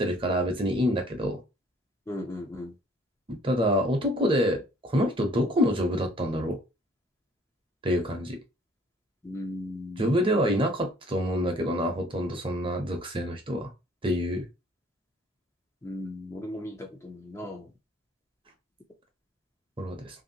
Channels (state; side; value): normal; both; correlation 0.57